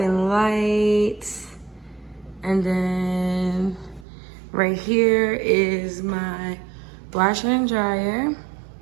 lights. And then right here is my washer and dryer.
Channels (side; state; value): left; drops out; at 4.0 s